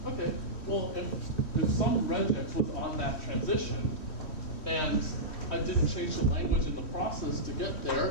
Okay, well, if some regex was on that transition, and I didn't change the language in the process to get there,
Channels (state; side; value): late; right; 3.1 ms